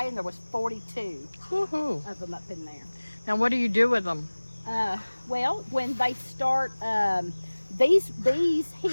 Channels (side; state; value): both; inverted; correlation -1.00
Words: and there was 42 of them up in there. Now what do you do with them? Well, when they start, these